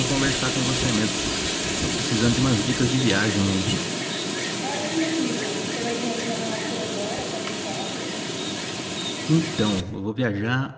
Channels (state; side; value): identical; both; correlation 1.00